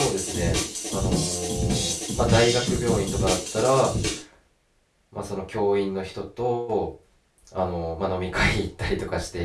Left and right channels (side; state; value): both; identical; correlation 1.00